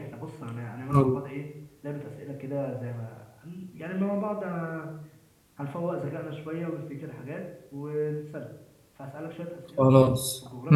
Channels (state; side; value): identical; both; correlation 1.00